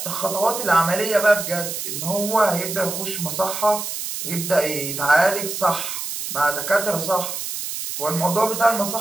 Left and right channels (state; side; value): noise; right; hiss, 5 dB below the sound